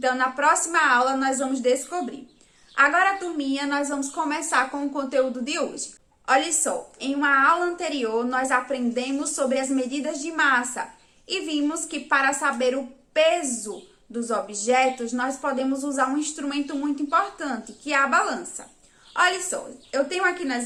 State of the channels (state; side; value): identical; both; correlation 1.00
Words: na próxima aula, nós vamos descobrir. Agora, turminha, nós vamos começar com o conteúdo de hoje. Olha só, em uma aula anterior nós aprendemos sobre as medidas de massa e vimos que para saber o peso dos objetos nós podemos usar um instrumento muito importante, que é a balança. Olha só, eu tenho aqui